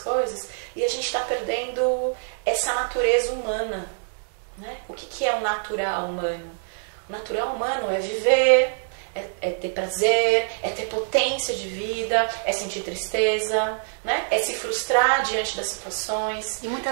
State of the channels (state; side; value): silent; left; digital silence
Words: e a gente está perdendo essa natureza humana. Né? O que é o natural humano? O natural humano é viver, é ter prazer, é ter potência de vida, é sentir tristeza, né? É se frustrar diante das situações. E